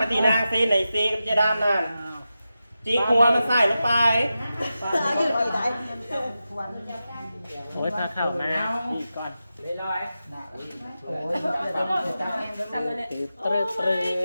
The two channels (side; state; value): both; inverted; correlation -0.92